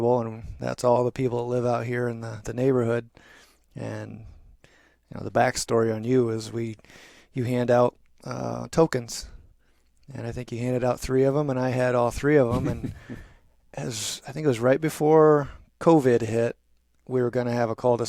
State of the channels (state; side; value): identical; both; correlation 1.00